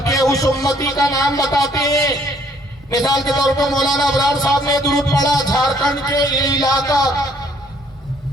اس امتی کا نام بتاتے ہیں. مثال کے طور پر مولانا ابرار صاحب نے درود پڑھا جھارکھنڈ کے یہ علاقہ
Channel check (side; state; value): both; normal; correlation 0.63